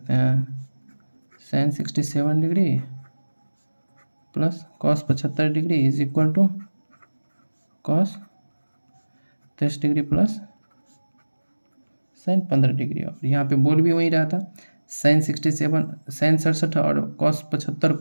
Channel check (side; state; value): both; inverted; correlation -1.00